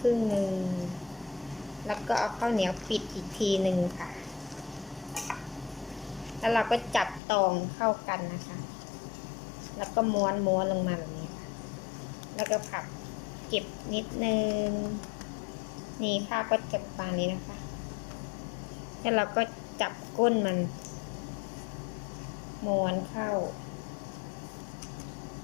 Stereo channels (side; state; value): right; drops out; at 7.2 s